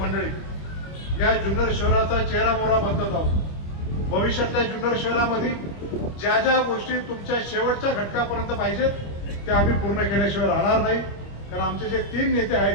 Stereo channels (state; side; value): late; right; 25 ms